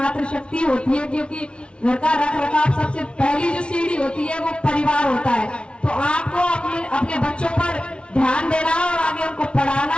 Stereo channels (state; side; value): late; right; 0.058 ms